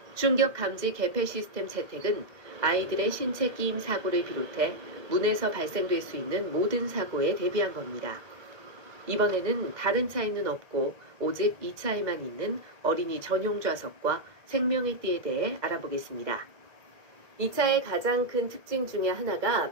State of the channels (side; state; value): left; late; 1.8 ms